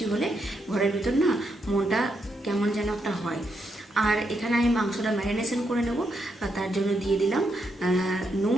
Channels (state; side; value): normal; both; correlation 0.80